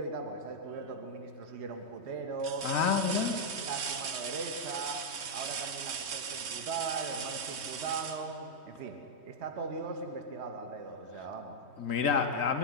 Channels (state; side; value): late; left; 3.2 ms